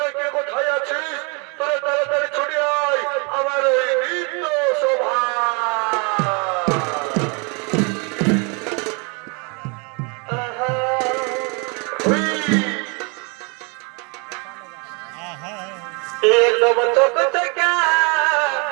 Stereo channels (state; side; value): quieter; left; 32.7 dB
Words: কে কোথায় আছিস? তোরা তাড়াতাড়ি ছুটে আয় আমার এই নৃত্য শোভা। एकदम चौक चका